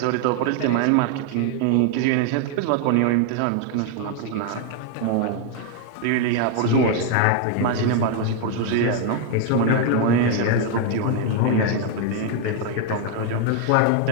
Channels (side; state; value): both; different; correlation 0.00